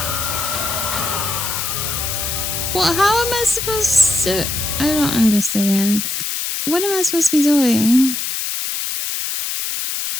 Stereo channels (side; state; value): left; noise; hiss, 3 dB below the sound